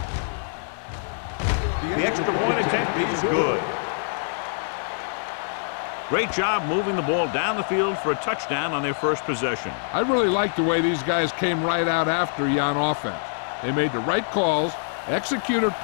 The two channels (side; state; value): right; silent; digital silence